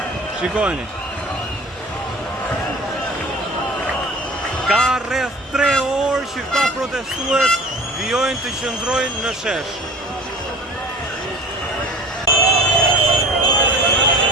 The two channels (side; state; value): both; normal; correlation 0.41